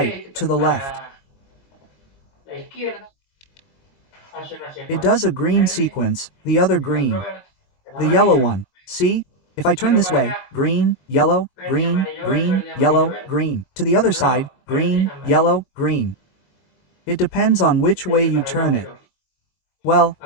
to the left. It does a green sequence, the other green. The yellow one. See? If I turn this way, green, yellow, green, green, yellow, green. To the other side, green, yellow, green. It depends on which way you turn it. Well,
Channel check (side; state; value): right; late; 22 ms